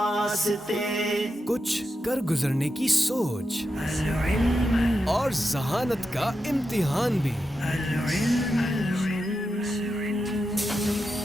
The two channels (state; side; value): normal; both; correlation 0.88